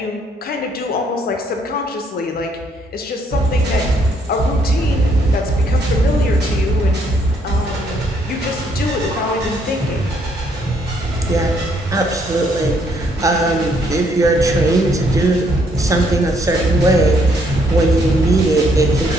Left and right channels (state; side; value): normal; both; correlation 0.69